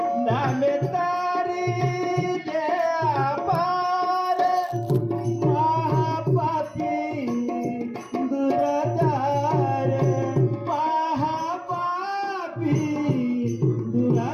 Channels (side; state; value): both; identical; correlation 1.00